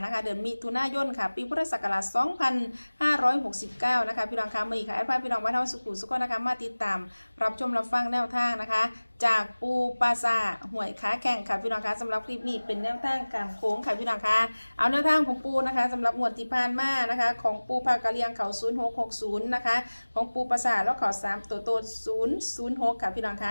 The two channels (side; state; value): both; inverted; correlation -1.00